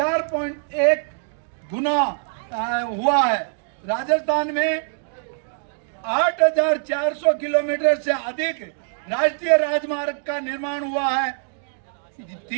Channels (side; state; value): left; silent; digital silence